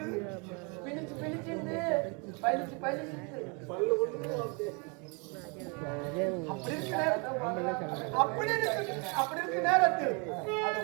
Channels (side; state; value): left; quieter; 32.9 dB